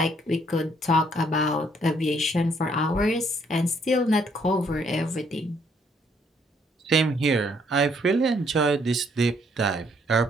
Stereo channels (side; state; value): both; normal; correlation 0.68